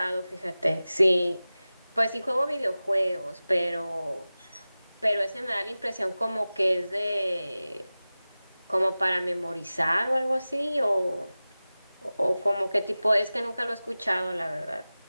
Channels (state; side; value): inverted; both; correlation -0.97